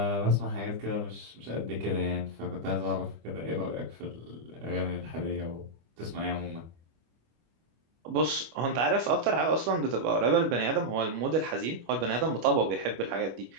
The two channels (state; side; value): late; left; 25 ms